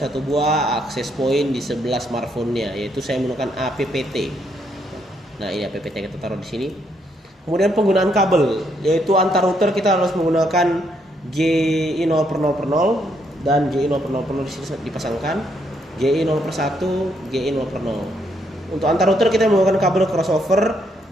buah access point di sebelah smartphone-nya, yaitu saya menggunakan APPT. Nah, ini APPT kita taruh di sini. Kemudian penggunaan kabel, yaitu antar router kita harus menggunakan GE0/0 dan GE0/0 di sini dipasangkan, GE0/1, GE0/0. Untuk antar router kita menggunakan kabel crossover,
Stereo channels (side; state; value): both; normal; correlation 0.74